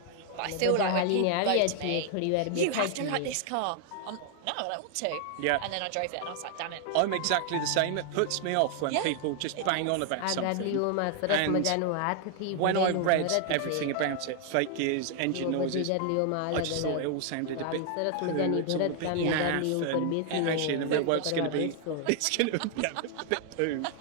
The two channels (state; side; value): different; both; correlation 0.00